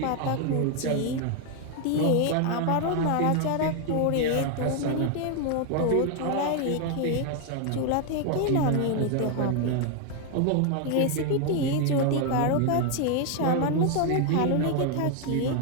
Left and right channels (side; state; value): both; different; correlation 0.01